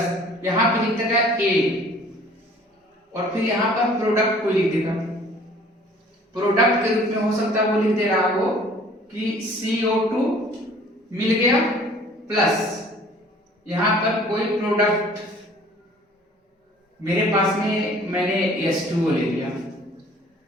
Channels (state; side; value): normal; both; correlation 0.53